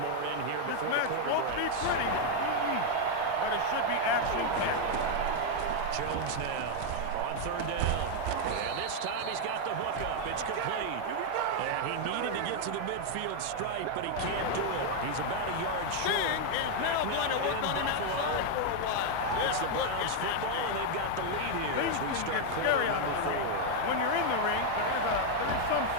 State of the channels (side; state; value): both; different; correlation 0.00